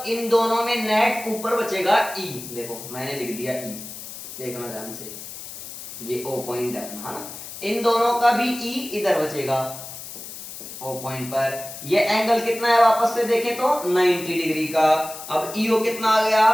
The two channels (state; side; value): noise; left; hiss, 11 dB below the sound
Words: इन दोनों में नेट ऊपर बचेगा e। देखो मैंने लिख दिया e, देखना ध्यान से, ये ओ पॉइंट देखना है ना, इन दोनों का भी ई इधर बचेगा ओ पॉइंट पर। ये एंगल कितना है वापस से देखें तो 90 डिग्री का। अब ईओ कितना आ गया